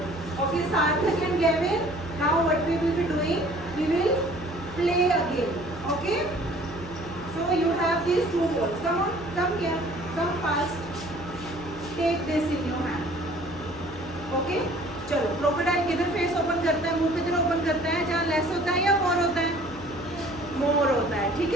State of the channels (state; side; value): noise; left; hum, 17 dB below the sound